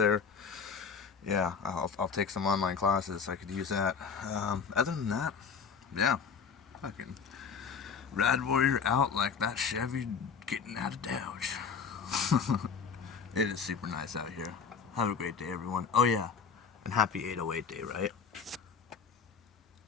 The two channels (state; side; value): quieter; right; 6.2 dB